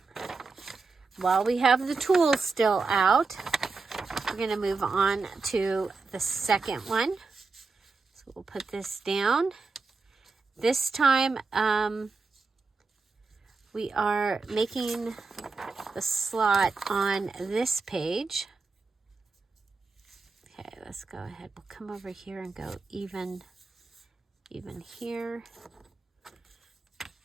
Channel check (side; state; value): left; quieter; 4.3 dB